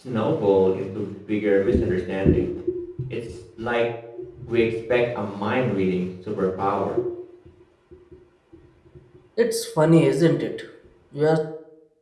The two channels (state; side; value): identical; both; correlation 1.00